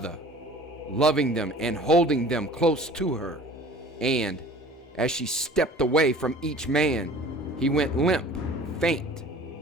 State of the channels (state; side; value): normal; both; correlation 0.46